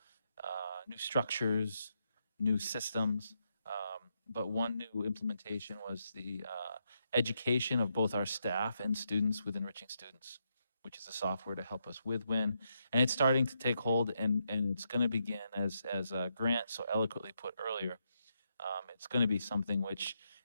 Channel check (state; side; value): inverted; both; correlation -0.80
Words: new structures, new systems. But one new implementation was the education of both our staff and students with Enriching Students, which is a software to help us with WIN. And it's starting to take hold, and it's going to begin, as Grant so eloquently put earlier, it's going to be something which